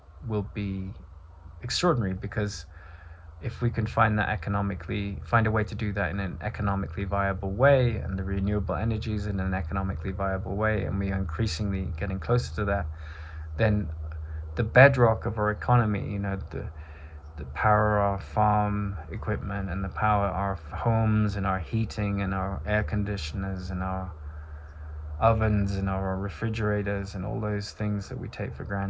will be extraordinary, because if we can find a way to do that in an economically viable way, and the renewable energies in an economically viable way, and we are increasingly getting closer to that, then the bedrock of our economy, the power of our farm equipment, and the power of our homes and our heating and our air conditioners and our ovens and our refrigerators and all those things that we take for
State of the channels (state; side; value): identical; both; correlation 1.00